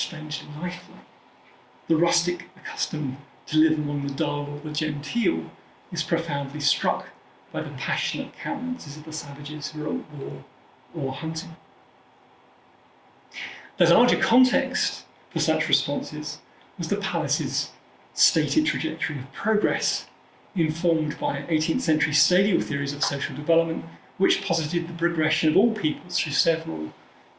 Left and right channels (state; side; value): identical; both; correlation 1.00